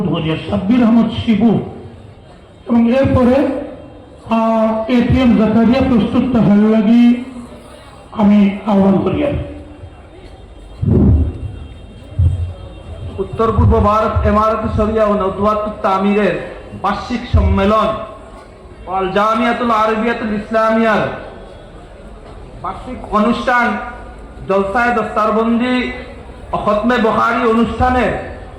করি, সাব্বির আহমদ শিবু, এবং এরপরে এটিএম জাকারিয়া প্রস্তুত থাকার লাগি আমি আহ্বান করি। উত্তর পূর্ব ভারত ইমারত শরিয়া ও নদওয়াতুত তামিরের বার্ষিক সম্মেলন আল জামিয়াতুল আরবিয়াতুল ইসলামিয়ার বার্ষিক অনুষ্ঠান জলসায়ে দস্তারবন্দি ও খতমে বুখারী অনুষ্ঠানের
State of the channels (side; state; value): both; identical; correlation 1.00